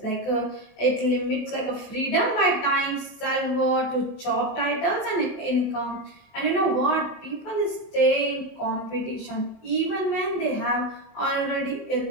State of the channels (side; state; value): right; late; 23 ms